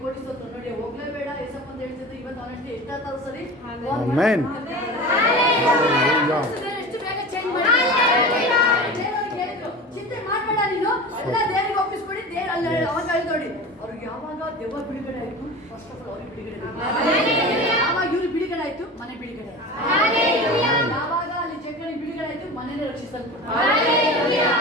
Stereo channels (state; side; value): normal; both; correlation 0.33